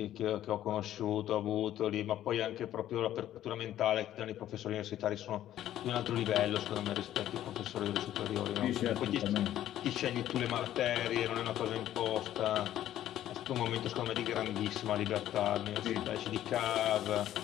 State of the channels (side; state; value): right; quieter; 12.4 dB